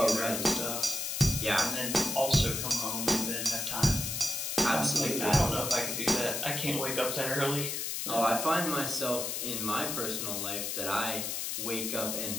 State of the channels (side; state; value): left; noise; hiss, 2 dB below the sound